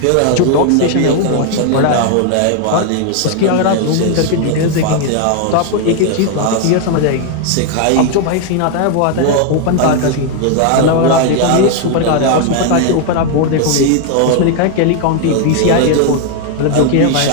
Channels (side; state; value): both; different; correlation 0.00